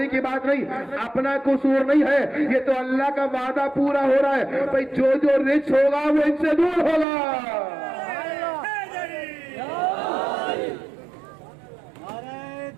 की बात नहीं, अपना कसूर नहीं है। ये तो अल्लाह का वादा पूरा हो रहा है। भाई जो जो रिच होगा वो इनसे दूर होगा। नारे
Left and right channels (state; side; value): drops out; left; at 7.1 s